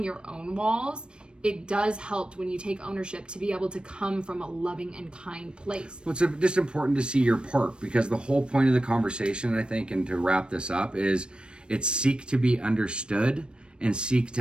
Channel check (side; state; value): left; late; 0.055 ms